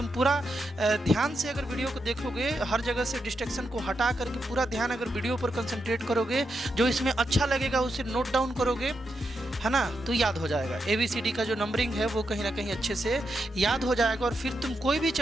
पूरा ध्यान से अगर वीडियो को देखोगे, हर जगह से डिस्ट्रैक्शन को हटा करके पूरा ध्यान अगर वीडियो पर कंसंट्रेट करोगे, जो इसमें अच्छा लगेगा उसे नोट डाउन करोगे, है ना, तो याद हो जाएगा। ABCD का जो नंबरिंग है वो कहीं ना कहीं अच्छे से याद हो जाएगा। और फिर तुम कोई भी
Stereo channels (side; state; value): both; normal; correlation 0.84